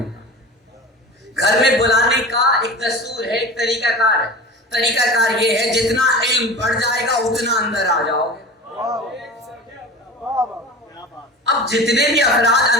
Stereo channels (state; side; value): normal; both; correlation 0.34